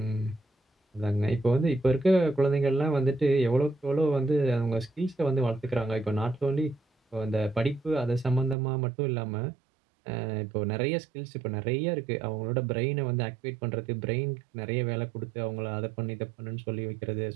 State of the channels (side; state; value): left; drops out; at 8.6 s